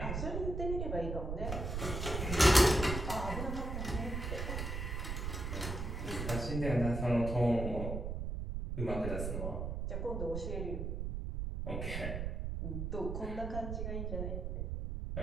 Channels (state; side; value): noise; right; rumble, 3 dB below the sound